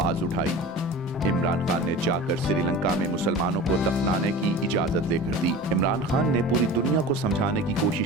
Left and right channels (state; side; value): normal; both; correlation 0.36